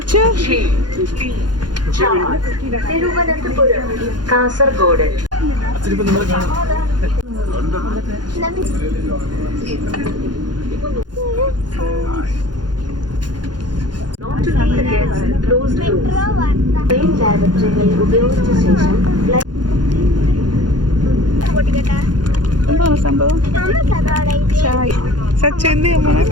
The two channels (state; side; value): late; left; 0.70 ms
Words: തിരുവനന്തപുരം, കാസർഗോഡ്. ഉപയോഗിച്ച ശേഷം എന്താണ് സംഭവം? സച്ചു എന്ത്